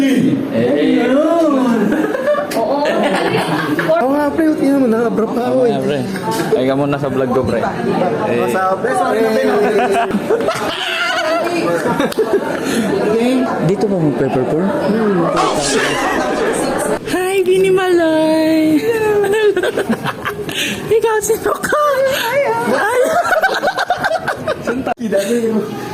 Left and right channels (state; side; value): identical; both; correlation 1.00